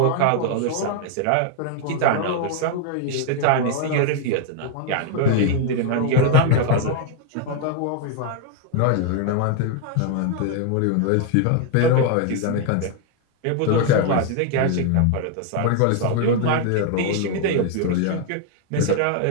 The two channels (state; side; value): different; both; correlation 0.00